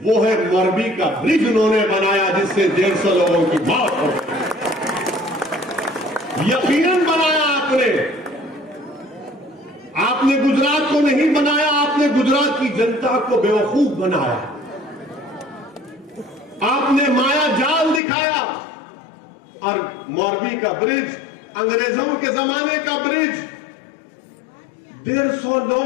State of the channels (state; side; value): drops out; right; at 18.0 s